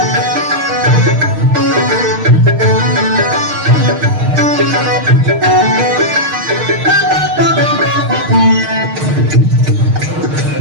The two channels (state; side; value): late; left; 6.5 ms